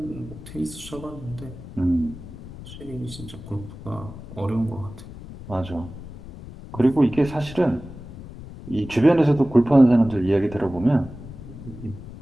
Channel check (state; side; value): noise; left; rumble, 14 dB below the sound